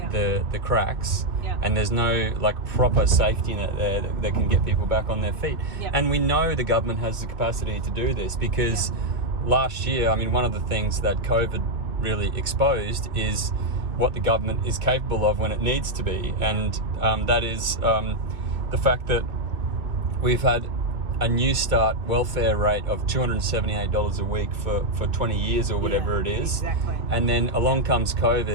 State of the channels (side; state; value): left; late; 2.6 ms